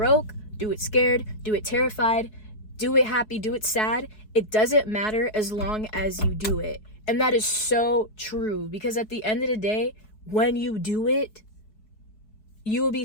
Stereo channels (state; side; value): late; right; 4.7 ms